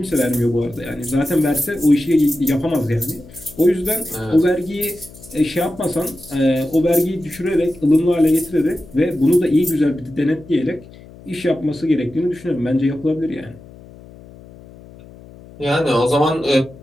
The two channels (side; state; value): left; noise; hum, 20 dB below the sound